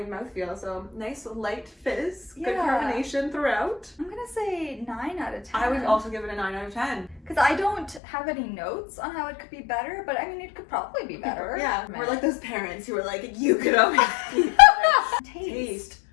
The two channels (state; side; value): drops out; right; at 8.0 s